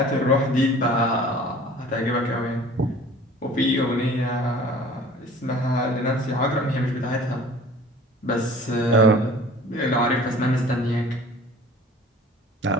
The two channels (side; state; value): both; normal; correlation 0.47